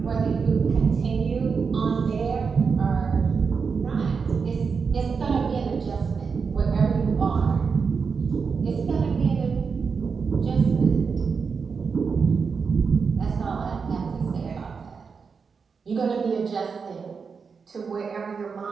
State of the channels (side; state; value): left; quieter; 5.5 dB